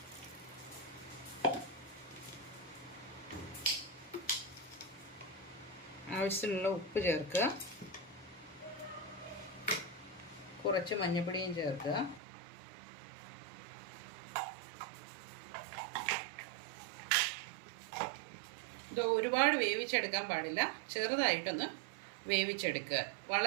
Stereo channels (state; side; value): drops out; left; at 12.2 s